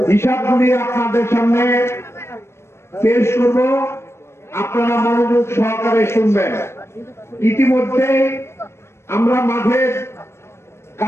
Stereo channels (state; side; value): late; right; 0.13 ms